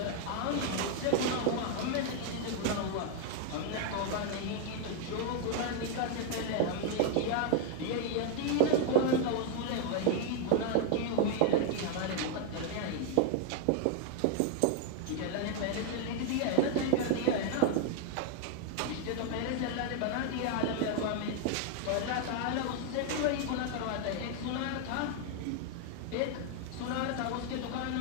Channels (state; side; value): different; both; correlation 0.00